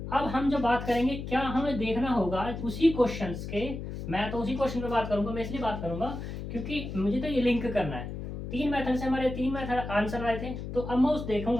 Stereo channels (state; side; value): noise; left; hum, 7 dB below the sound